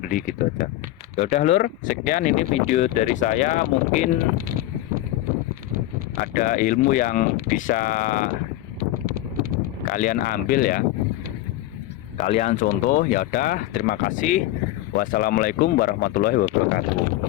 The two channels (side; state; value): right; quieter; 15.4 dB